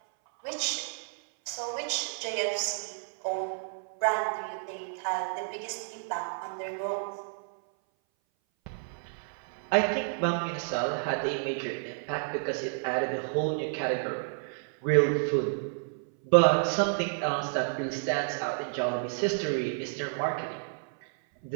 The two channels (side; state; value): left; silent; 57 dB below the other